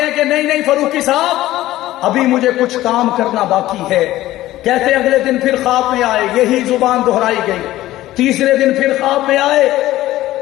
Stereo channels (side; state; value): right; quieter; 15.5 dB